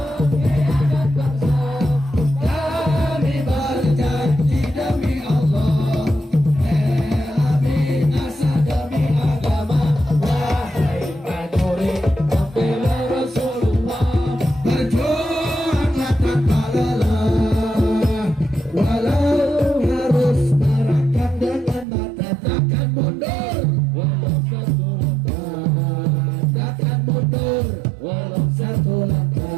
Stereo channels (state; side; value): drops out; left; at 21.9 s